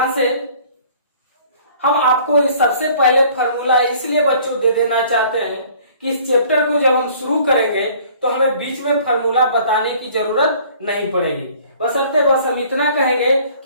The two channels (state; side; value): inverted; both; correlation -0.53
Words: से, हम आपको इस सबसे पहले फॉर्मूला इसलिए बच्चों दे देना चाहते हैं कि इस चैप्टर को जब हम शुरू करेंगे तो हमें बीच में फॉर्मूला बताने की जरूरत नहीं पड़ेगी। बशर्ते बस हम इतना कहेंगे